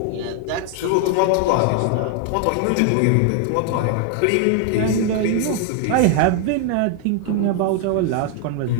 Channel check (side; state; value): both; different; correlation 0.00